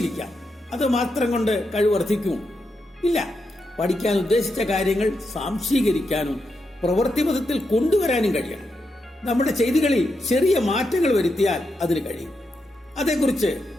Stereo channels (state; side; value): normal; both; correlation 0.84